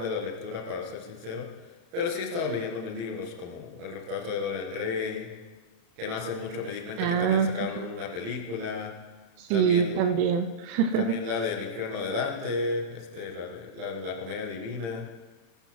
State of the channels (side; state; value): left; late; 35 ms